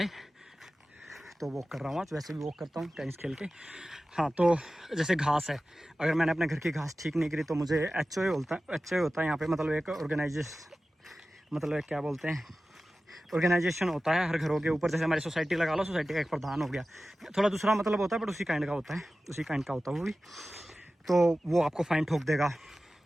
तो वॉक कर रहा हूँ आज। वैसे भी वॉक करता हूँ टेनिस खेल के। हाँ, तो जैसे घास है, अगर मैंने अपने घर की घास ठीक नहीं करी तो मुझे HOA होता है यहाँ पे, मतलब एक मतलब एक क्या बोलते हैं, ऑर्गेनाइजेशन होता है हर घरों के ऊपर। जैसे हमारी सोसाइटी लगा लो, सोसाइटी का एक प्रधान हो गया, थोड़ा दूसरा मतलब होता है बट उसी काइंड का होता है, वो भी। तो वो आपको फाइन ठोक देगा,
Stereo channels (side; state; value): both; normal; correlation 0.95